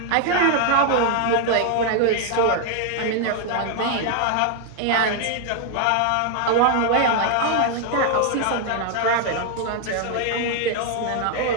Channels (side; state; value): both; different; correlation 0.00